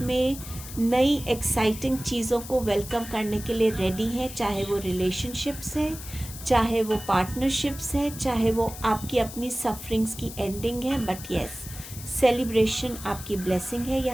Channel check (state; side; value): noise; left; hiss, 13 dB below the sound